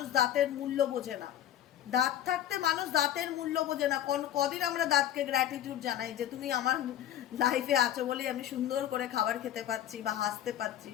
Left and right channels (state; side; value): quieter; right; 11.6 dB